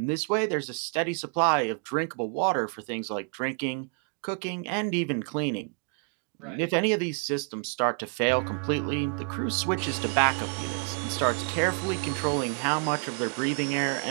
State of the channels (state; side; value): quieter; left; 37.9 dB